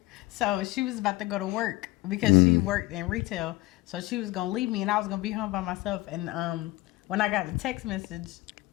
So she was about to go to work because she worked in retail. So she was going to leave me and I was going to be home by myself. And when I got the text message,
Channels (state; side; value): quieter; right; 19.7 dB